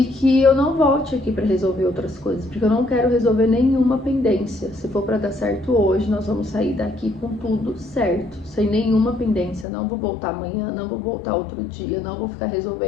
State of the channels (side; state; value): right; drops out; at 9.7 s